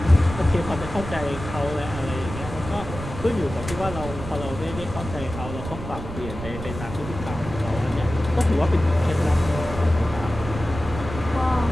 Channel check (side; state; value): right; noise; rumble, 9 dB below the sound